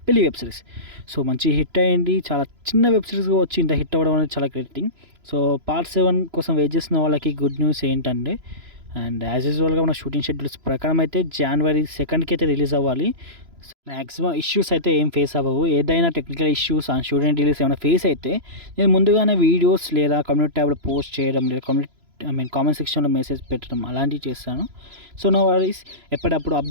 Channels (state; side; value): late; left; 3.0 ms